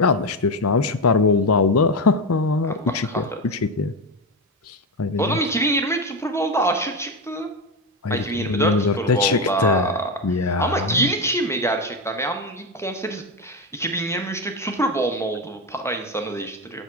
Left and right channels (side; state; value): both; normal; correlation 0.14